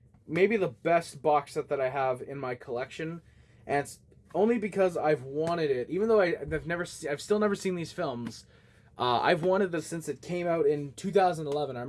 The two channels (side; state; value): both; identical; correlation 1.00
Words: maybe the best box set that I have in my collection, and it's only because I've wanted it. Even though I've still never seen these films. I've wanted this since it came out in 2011. I